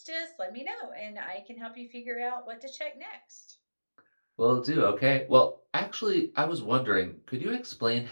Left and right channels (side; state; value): both; inverted; correlation -1.00